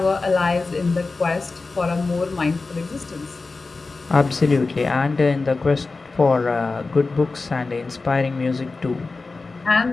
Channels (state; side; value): quieter; right; 3.8 dB